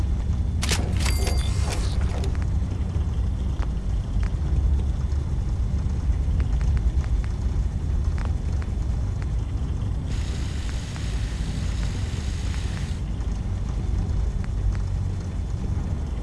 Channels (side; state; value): both; identical; correlation 1.00